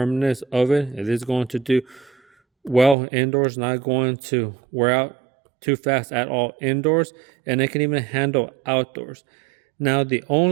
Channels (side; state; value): left; drops out; at 3.0 s